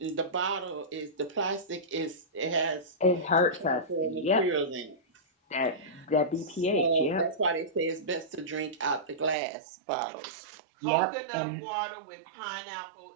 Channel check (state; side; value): drops out; left; at 9.3 s